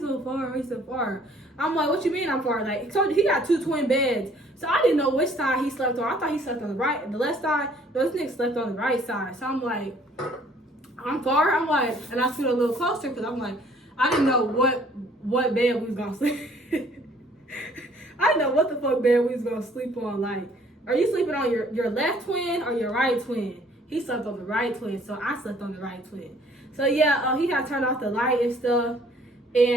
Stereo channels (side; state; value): both; normal; correlation 0.59